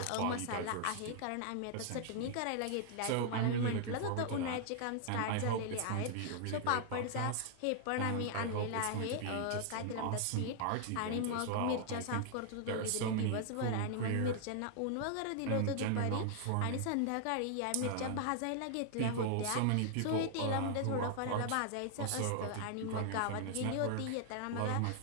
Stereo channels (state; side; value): different; both; correlation 0.00